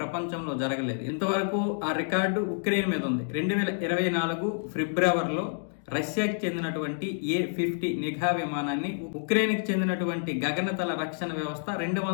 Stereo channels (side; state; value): right; silent; digital silence